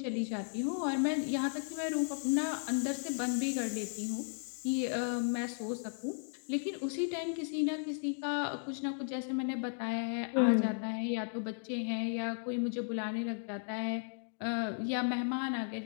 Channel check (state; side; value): silent; right; digital silence